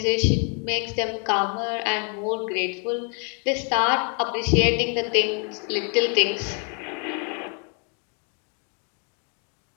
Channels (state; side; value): quieter; right; 39.0 dB